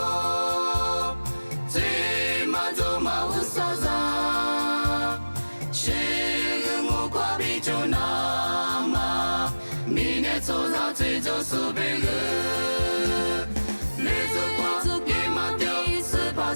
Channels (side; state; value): both; inverted; correlation -1.00